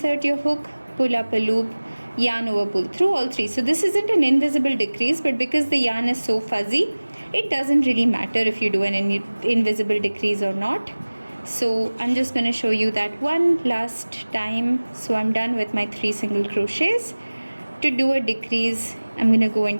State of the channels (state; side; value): inverted; both; correlation -1.00